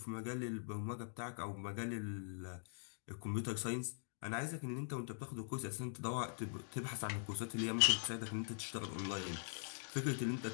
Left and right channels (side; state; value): right; silent; digital silence